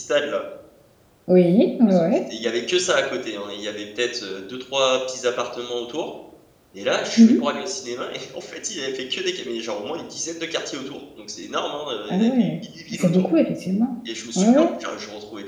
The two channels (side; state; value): both; identical; correlation 1.00